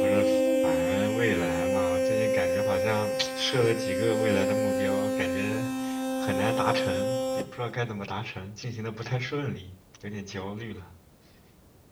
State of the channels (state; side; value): identical; both; correlation 1.00